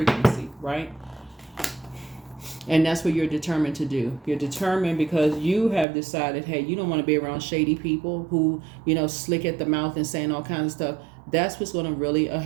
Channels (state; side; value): drops out; left; at 5.9 s